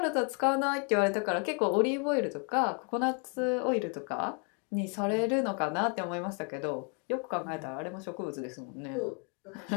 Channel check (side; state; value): right; quieter; 36.2 dB